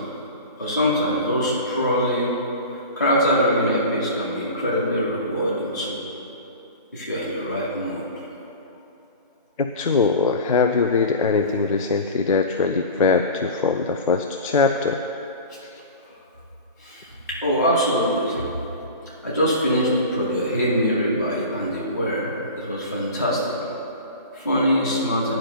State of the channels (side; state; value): both; inverted; correlation -0.33